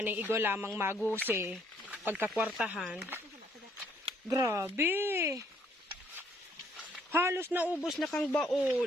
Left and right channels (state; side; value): normal; both; correlation 0.66